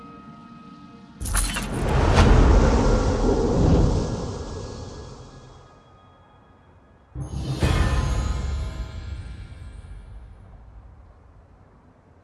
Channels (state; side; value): identical; both; correlation 1.00